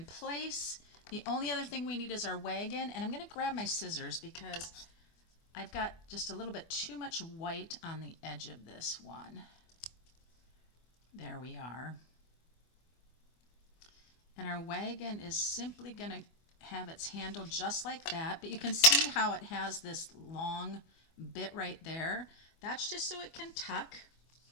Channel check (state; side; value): late; right; 24 ms